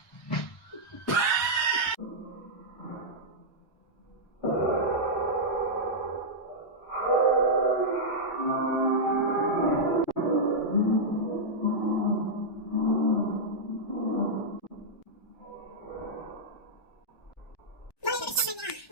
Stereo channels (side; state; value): right; late; 1.2 ms